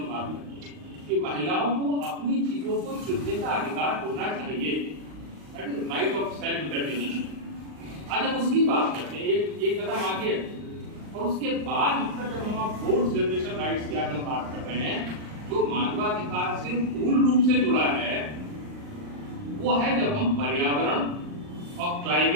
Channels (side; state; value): left; late; 39 ms